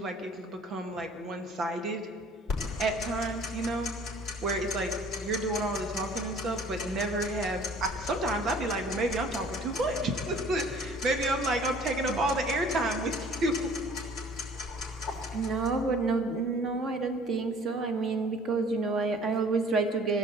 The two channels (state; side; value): normal; both; correlation 0.52